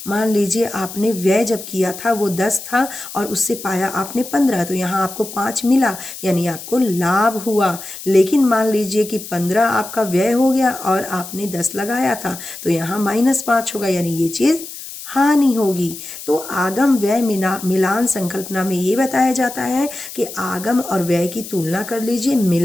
मान लीजिए आपने व्यय जब किया था वो 10 था और उससे पाया आपने 15, तो यहाँ आपको 5 मिला, यानी आपको लाभ हुआ। लेकिन मान लीजिए कि 15 आपका व्यय हो गया और आपने 10 लगाया था, तो यहाँ -5 होगा, यानी ये चीज़ हानि होगी। तो आगम व्यय मिलान संकल्पना में ये बताया जाता है कि आगम और व्यय की तुलना कर लीजिए,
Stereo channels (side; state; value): left; noise; hiss, 12 dB below the sound